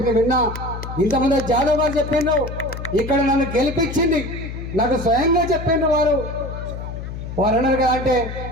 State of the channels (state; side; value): noise; left; hum, 8 dB below the sound